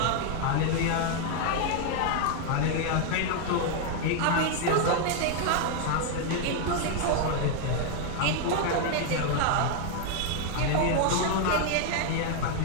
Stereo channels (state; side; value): different; both; correlation 0.00